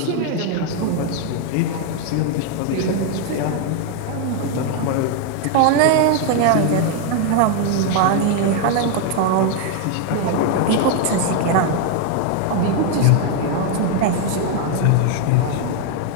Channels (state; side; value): different; both; correlation 0.01